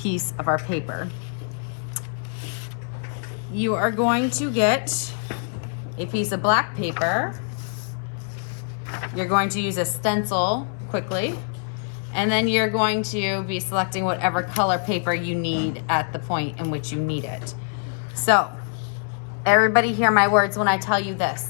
of our paper. You are going to get a piece of black paper. You're going to use a stencil quickly. And then you're going to be selecting whatever color paper you need at the point in which you need it. So, everybody hear my words when I tell you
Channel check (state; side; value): silent; right; 62 dB below the other